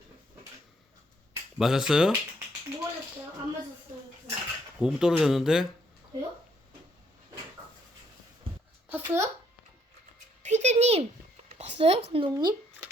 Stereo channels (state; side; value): normal; both; correlation 0.70